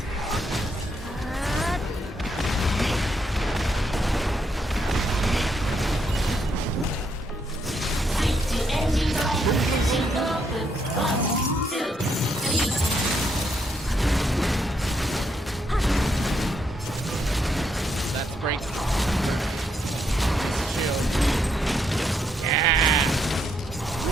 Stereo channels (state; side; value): normal; both; correlation 0.76